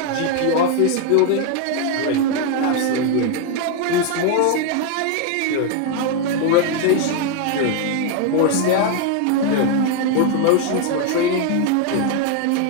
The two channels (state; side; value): different; both; correlation 0.01